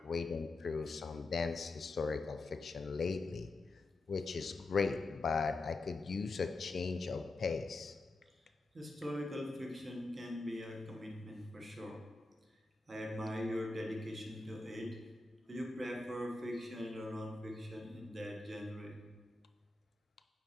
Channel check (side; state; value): right; quieter; 3.1 dB